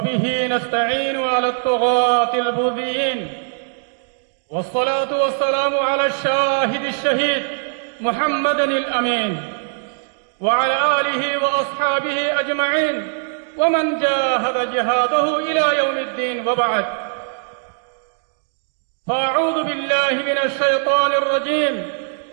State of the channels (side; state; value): left; silent; digital silence